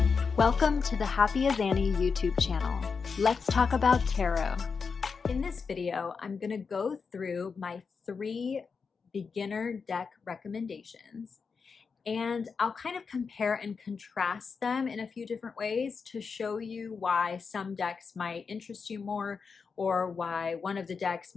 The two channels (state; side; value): quieter; right; 5.4 dB